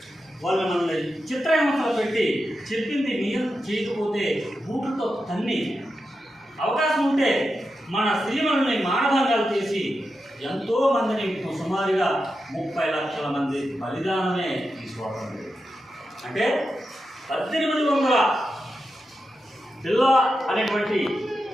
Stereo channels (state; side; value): normal; both; correlation 0.89